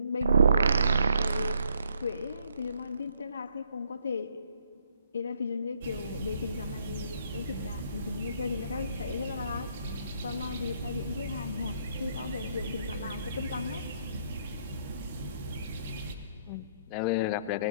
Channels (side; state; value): both; inverted; correlation -0.69